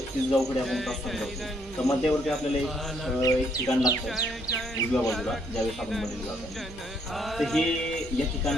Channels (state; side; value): noise; right; hum, 19 dB below the sound